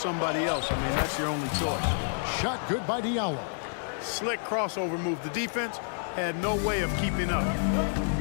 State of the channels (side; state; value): right; silent; 59 dB below the other